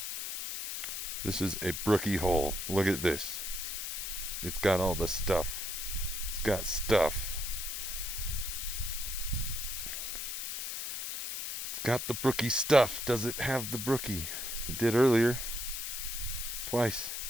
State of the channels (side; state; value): left; noise; hiss, 4 dB below the sound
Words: This is a brookie hole. Look at this. It's got all the stuff. It's got stuff. It's got the brookie stuff. Does it have the brookie? It did earlier. Twice.